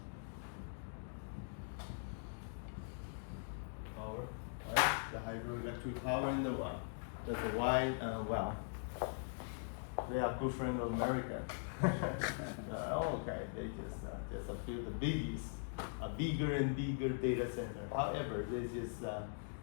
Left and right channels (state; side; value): silent; right; digital silence